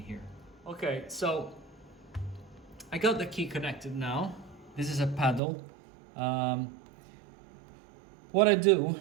Okay, so I got the key connected now. This is a paddle. What I do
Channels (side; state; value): left; drops out; at 5.4 s